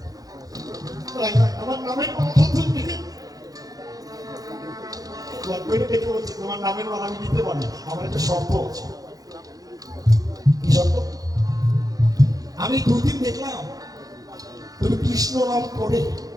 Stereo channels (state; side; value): late; left; 0.18 ms